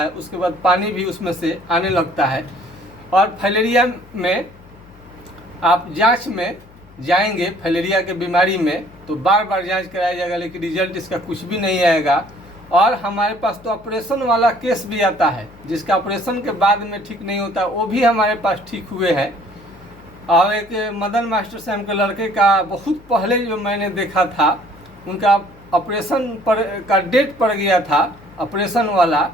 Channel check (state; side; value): noise; left; hum, 24 dB below the sound